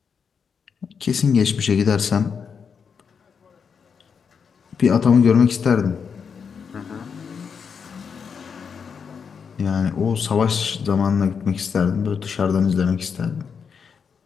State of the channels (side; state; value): right; quieter; 6.4 dB